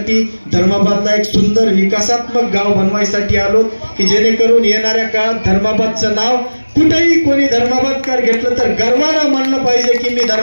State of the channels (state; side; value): inverted; both; correlation -1.00